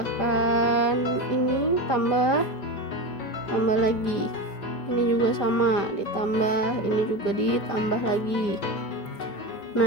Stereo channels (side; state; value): right; late; 5.0 ms